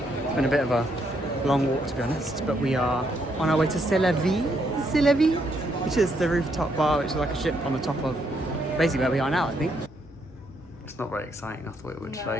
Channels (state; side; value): normal; both; correlation 0.75